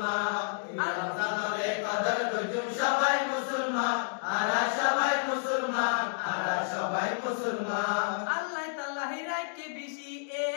এই রমজানের কদর করজুম সবাই মুসলমান আরা সবাই মুসলমান আরা সবাই মুসলমান আল্লাহ তাআলাই রাখে বেশি এ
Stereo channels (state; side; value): silent; right; digital silence